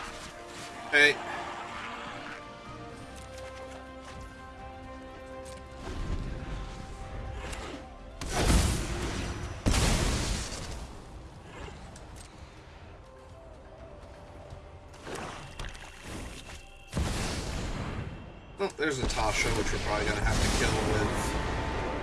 Alright. Oh, there's a Tasha, which we're probably gonna have to kill with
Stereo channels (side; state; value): both; identical; correlation 1.00